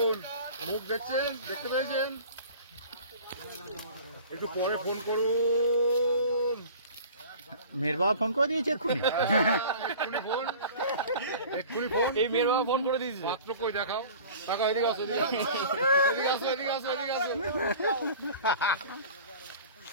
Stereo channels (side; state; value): both; inverted; correlation -0.42